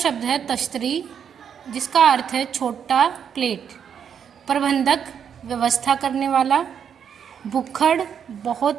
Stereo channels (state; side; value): quieter; left; 7.9 dB